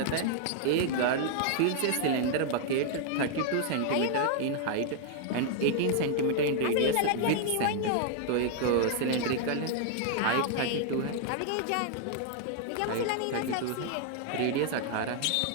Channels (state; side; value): different; both; correlation 0.00